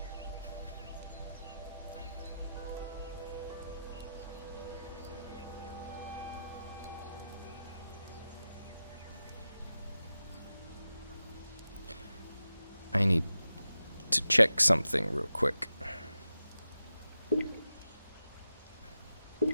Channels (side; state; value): both; inverted; correlation -0.91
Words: I need to check something real quick.